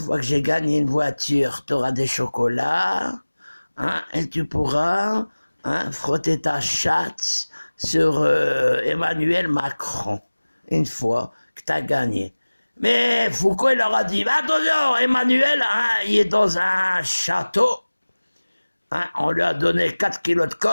que j'ai gagné une voiture, tu auras des chocolats, et tu pourras frotter ta chatte sur Emmanuel Macron, une fois que tu as gagné. Mais Foucault, il leur a dit, attention, Emmanuel, il est dans un château, on lui a donné 4 kilos de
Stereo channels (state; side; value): inverted; both; correlation -1.00